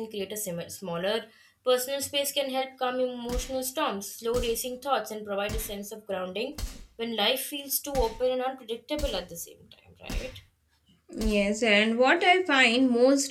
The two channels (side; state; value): both; identical; correlation 1.00